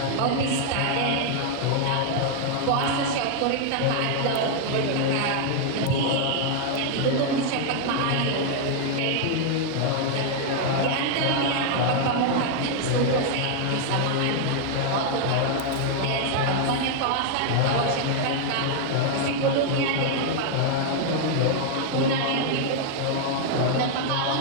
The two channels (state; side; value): different; both; correlation 0.00